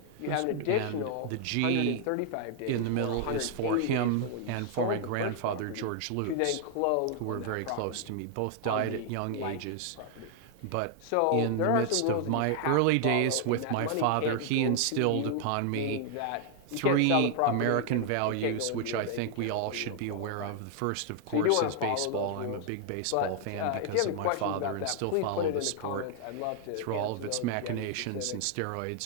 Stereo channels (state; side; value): different; both; correlation 0.00